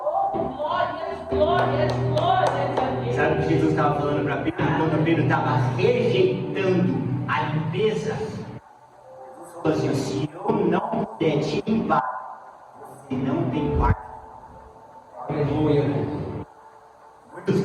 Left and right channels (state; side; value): identical; both; correlation 1.00